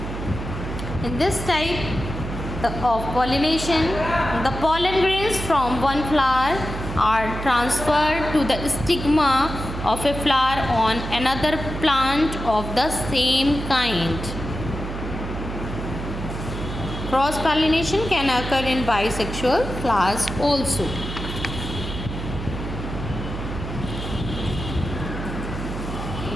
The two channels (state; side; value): noise; right; hum, 7 dB below the sound